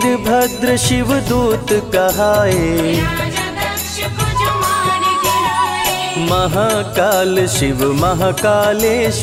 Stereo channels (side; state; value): both; identical; correlation 1.00